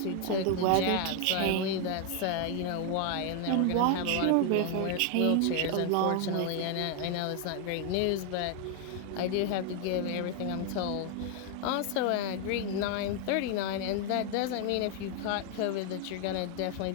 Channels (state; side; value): different; both; correlation 0.01